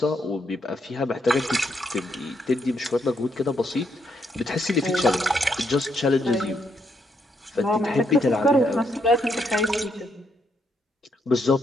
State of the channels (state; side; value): normal; both; correlation 0.76